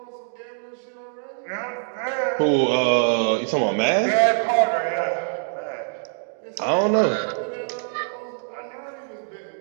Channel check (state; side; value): silent; left; digital silence